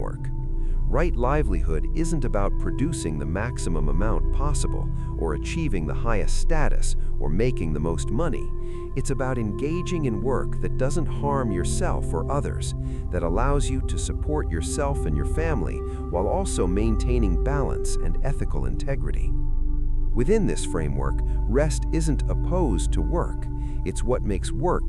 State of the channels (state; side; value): identical; both; correlation 1.00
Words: Right livelihood isn't about producing the maximum amount possible, or achieving the highest status, or making the most money. It's about engaging in work that doesn't harm yourself or others, that allows you to support yourself and your family while also maintaining balance and ethical integrity. Within this framework, rest isn't opposed to work. It's what makes